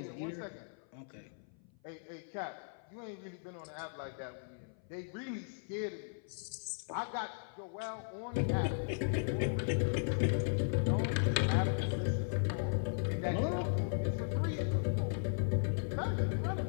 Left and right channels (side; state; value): right; silent; 53 dB below the other